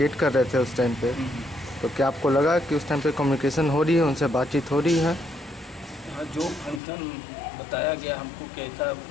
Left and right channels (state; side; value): drops out; right; at 6.8 s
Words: कर रहे थे उस टाइम पे? तो क्या आपको लगा कि उस टाइम पे कम्युनिकेशन हो रही है, उनसे बातचीत हो रही है? हाँ, जो फंक्शन बताया गया हमको कि ऐसा